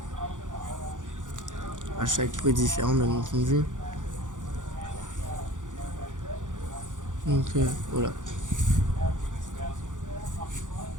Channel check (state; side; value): late; left; 0.87 ms